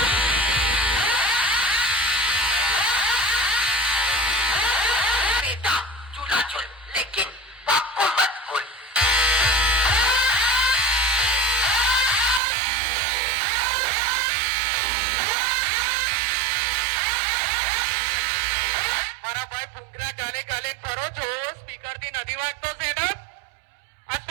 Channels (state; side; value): drops out; left; at 12.4 s